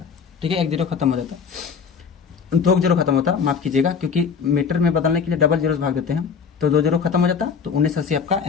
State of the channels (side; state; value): right; quieter; 6.1 dB